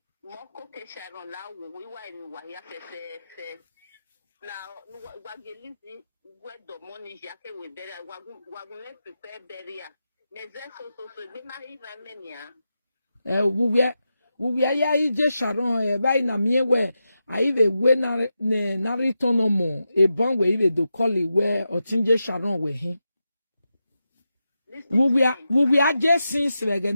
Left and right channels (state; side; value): inverted; both; correlation -0.89